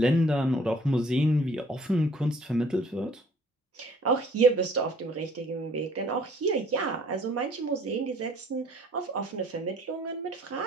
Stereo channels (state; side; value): normal; both; correlation 0.56